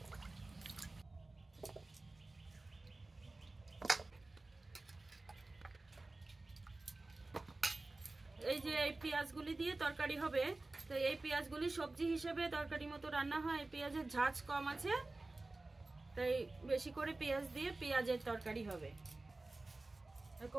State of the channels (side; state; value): left; quieter; 3.1 dB